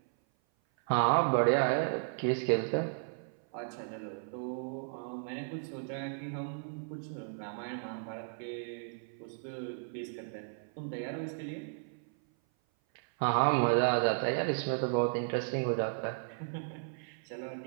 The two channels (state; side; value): silent; left; 55 dB below the other